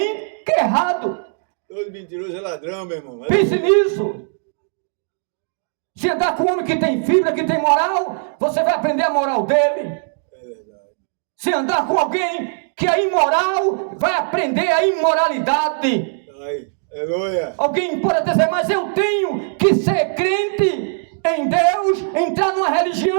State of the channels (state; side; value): silent; left; 63 dB below the other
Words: que é errado. Todo mentiroso é ladrão, meu irmão. Pense nisso. Se andar com um homem que tem fibra, que tem moral, você vai aprender a moral dele. É verdade. Se andar com alguém que é imoral, vai aprender a imoralidade. Ai, aleluia! Alguém pode dizer, mas eu tenho que ser crente em Deus, entrar numa